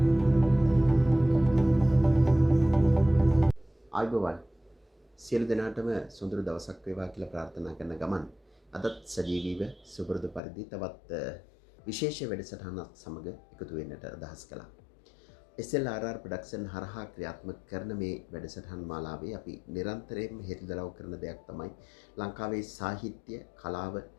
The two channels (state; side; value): drops out; right; at 10.4 s